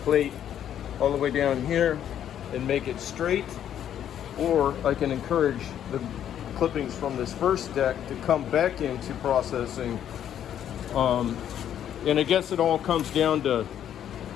all the way down here and make it straight, or I can encourage the clippings from this first deck to come back into processing. And I guess it all comes down to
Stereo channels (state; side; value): quieter; right; 10.1 dB